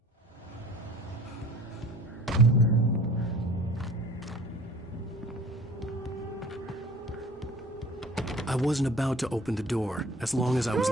I wasn't about to open the door, as long as I was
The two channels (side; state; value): both; normal; correlation 0.46